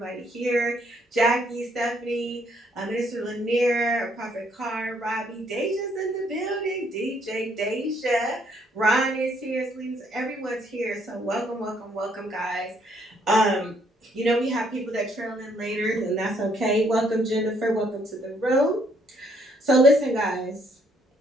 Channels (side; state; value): both; normal; correlation 0.68